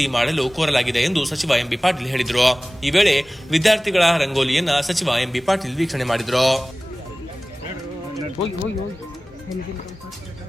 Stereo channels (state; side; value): normal; both; correlation 0.98